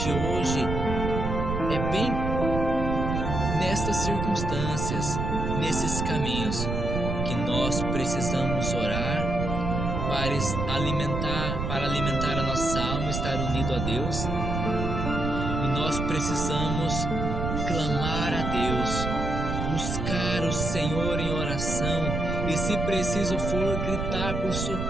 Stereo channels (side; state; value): right; noise; rumble, 2 dB below the sound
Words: hoje é bem nestas circunstâncias, nesses caminhos, que nós precisamos orar para alimentar a nossa alma, estar unido a Deus. E nós precisamos clamar a Deus, buscar o Senhor em oração, e se preciso for gritar por